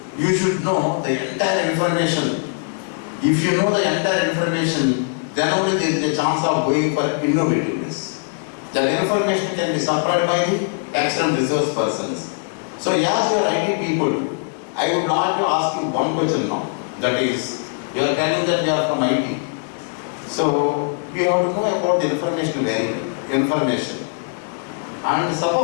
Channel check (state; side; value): silent; right; 65 dB below the other